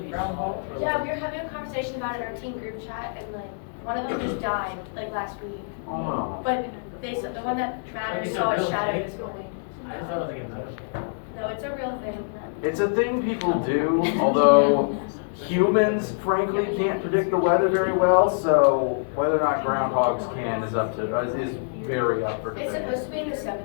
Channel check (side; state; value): right; silent; digital silence